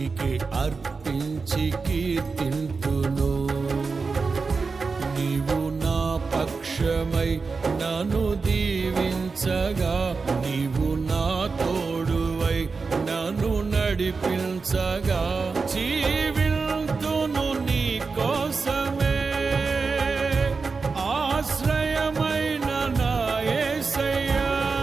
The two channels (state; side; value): quieter; left; 4.5 dB